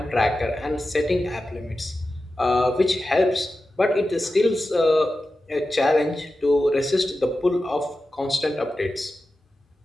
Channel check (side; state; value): both; normal; correlation 0.93